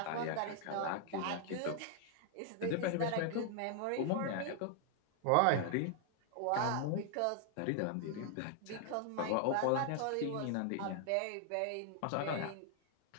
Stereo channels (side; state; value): both; different; correlation 0.00